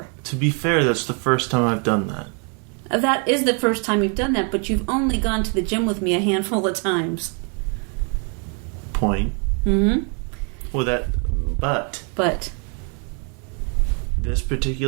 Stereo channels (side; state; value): left; quieter; 38.2 dB